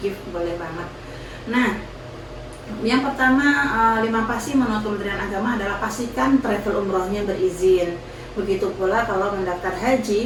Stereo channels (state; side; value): identical; both; correlation 1.00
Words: gift, boleh banget. Nah, yang pertama 5 pasti menurut Kementerian Agama adalah pastikan travel umrohnya berizin. Begitu pula kalau mendaftar